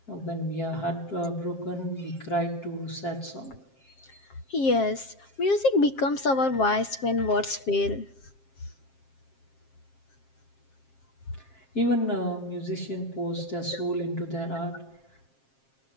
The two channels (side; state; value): right; late; 7.5 ms